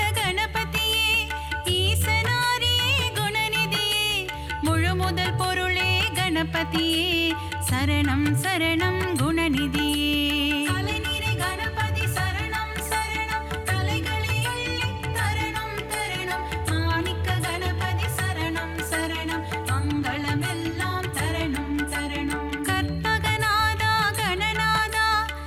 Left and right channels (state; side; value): identical; both; correlation 1.00